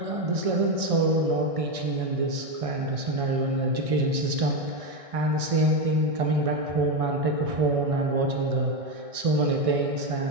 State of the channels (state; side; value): late; left; 1.6 ms